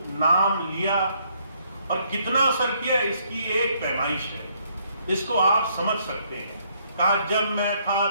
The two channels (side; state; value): both; inverted; correlation -0.70